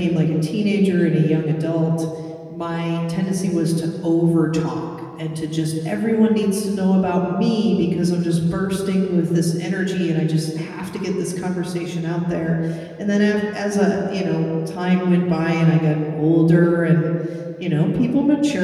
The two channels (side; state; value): both; identical; correlation 1.00